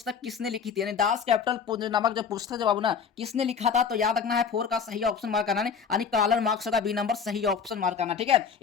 किसने लिखी थी, यानी दास कैपिटल नामक जो पुस्तक जो बाबू ना किसने लिखा था। तो याद रखना है 4 का सही ऑप्शन मार्क करना है, यानी कार्ल मार्क्स का बी नंबर सही ऑप्शन मार्क करना, ठीक है।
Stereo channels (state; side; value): quieter; right; 6.4 dB